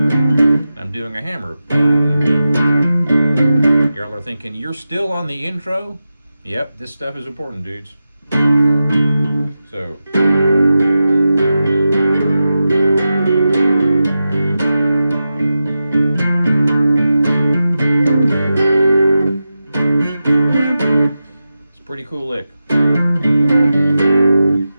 Doing a hammer. Y'all are thinking, you're still on the intro? Yep, this stuff is important, dudes. So. It's a pretty cool lick. And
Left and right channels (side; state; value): both; inverted; correlation -0.92